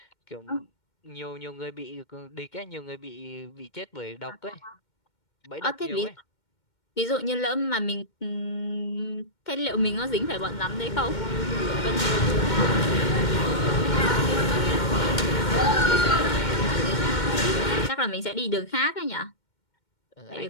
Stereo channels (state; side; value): late; right; 2.1 ms